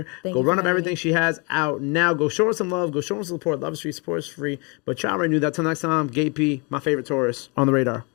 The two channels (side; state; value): right; quieter; 30.7 dB